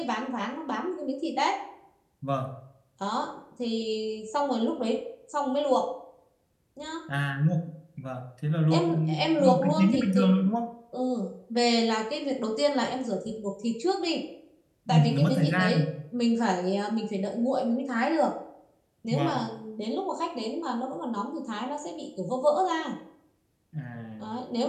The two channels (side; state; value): both; identical; correlation 1.00